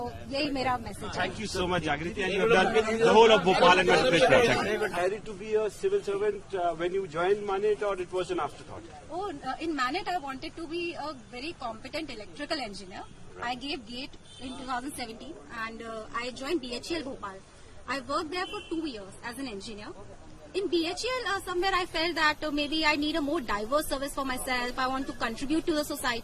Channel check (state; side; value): identical; both; correlation 1.00